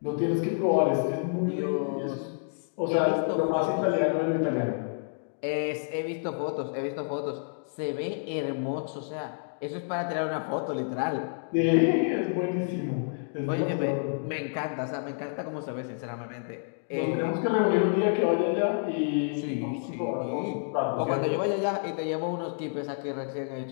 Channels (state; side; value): silent; right; digital silence